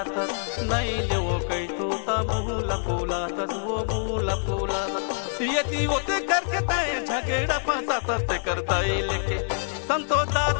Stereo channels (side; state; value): right; silent; 61 dB below the other